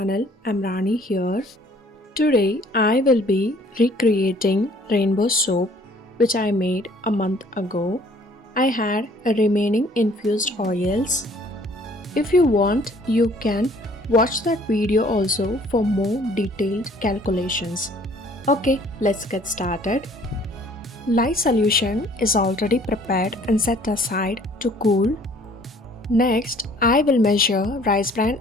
I'm Rani here. Today I will be recreating rainbow soap which I made a month ago. I had a remaining infused oils. If you want, you can watch that video also for more detailed calculations. Okay, let's get started. Lye solution is already prepared and set aside to cool. Next, I will measure rice bran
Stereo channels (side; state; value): both; normal; correlation 0.57